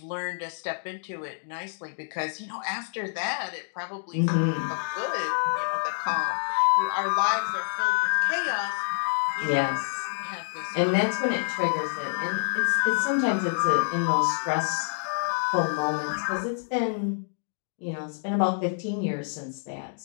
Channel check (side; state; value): right; silent; digital silence